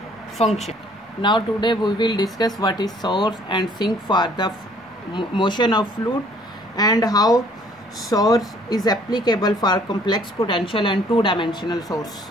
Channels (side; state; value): both; normal; correlation 0.59